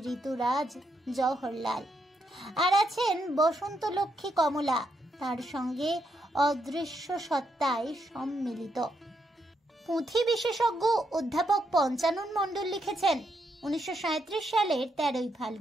ঋতুরাজ জওহরলাল। আর আছেন বসন্ত লক্ষ্মী কমলা, তার সঙ্গে অদৃশ্য সত্তায় সম্মিলিত। পুঁথি বিশেষজ্ঞ অধ্যাপক পঞ্চানন মণ্ডল লিখেছেন, 1937 সালের 13ই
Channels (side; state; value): both; normal; correlation 0.79